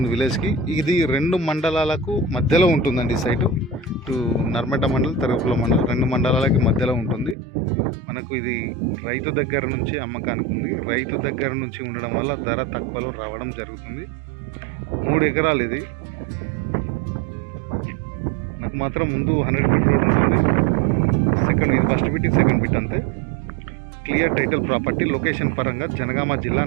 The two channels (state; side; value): drops out; left; at 7.4 s